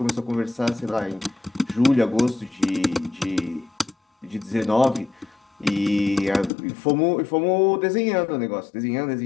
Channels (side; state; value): right; drops out; at 6.5 s